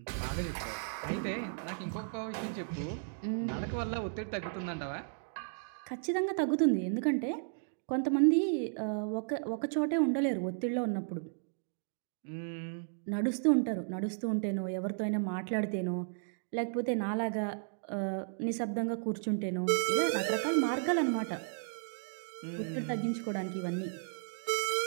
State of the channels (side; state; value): left; silent; digital silence